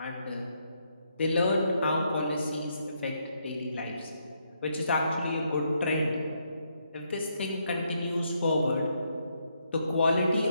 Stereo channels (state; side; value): inverted; both; correlation -0.77